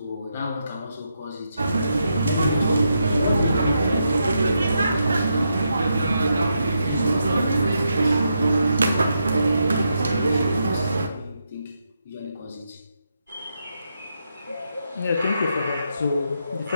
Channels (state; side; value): inverted; both; correlation -0.82